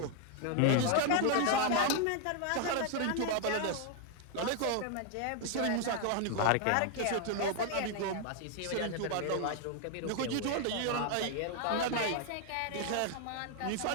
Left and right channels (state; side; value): different; both; correlation 0.00